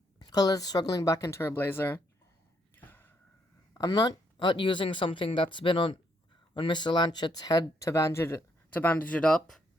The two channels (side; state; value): both; normal; correlation 0.73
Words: Coletta's struggling back into her blazer. I'm not using something that's been on Mr. Lanchet's head to bandage it up.